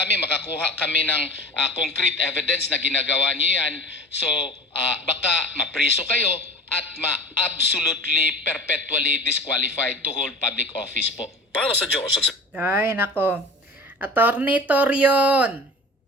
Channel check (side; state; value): both; normal; correlation 0.38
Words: makakuha kami ng concrete evidence na ginagawa nyo yan. So baka mapriso kayo at absolutely perpetually disqualified to hold public office po. Para sa Diyos. Ay, nako. Attorney Torion,